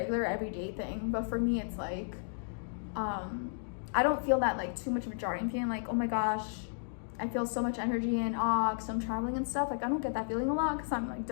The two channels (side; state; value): right; silent; digital silence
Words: everyday thing. But for me, it's like I don't feel that like too much of a jarring feeling like, oh my gosh, I feel so much energy and awe because I'm traveling and stuff. Like, I don't get that feeling a lot because I'm like